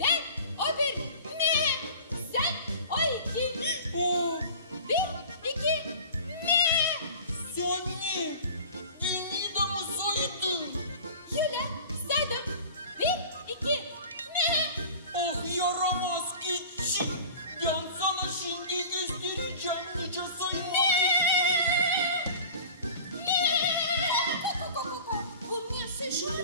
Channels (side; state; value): both; inverted; correlation -0.40